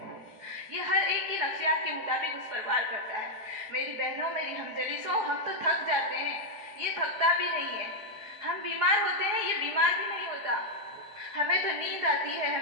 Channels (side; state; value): left; late; 4.8 ms